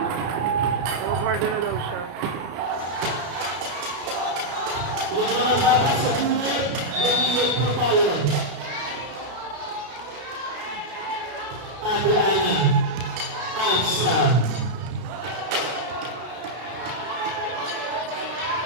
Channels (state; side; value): late; left; 33 ms